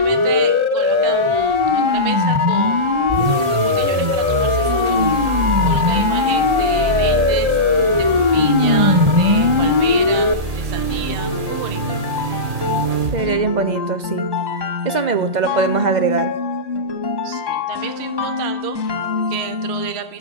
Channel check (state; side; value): late; left; 1.7 ms